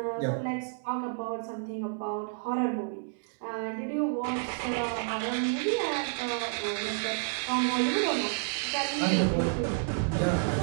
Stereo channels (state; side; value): silent; left; digital silence